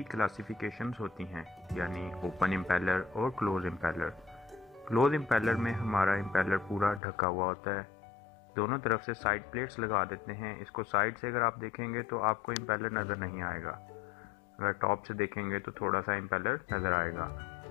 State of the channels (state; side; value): drops out; right; at 7.0 s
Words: क्लासिफिकेशंस होती हैं, यानी ओपन इम्पेलर और क्लोज इम्पेलर। क्लोज इम्पेलर में हमारा इम्पेलर पूरा ढका हुआ होता है, दोनों तरफ से साइड प्लेट्स लगा देते हैं। इसको साइड से अगर आप देखेंगे तो आपको इम्पेलर नज़र नहीं आएगा, अगर टॉप से देखेंगे तो थोड़ा सा इम्पेलर नज़र आएगा।